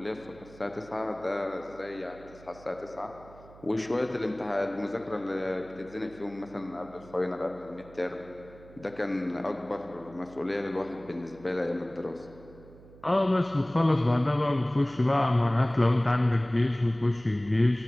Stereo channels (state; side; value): noise; right; hum, 21 dB below the sound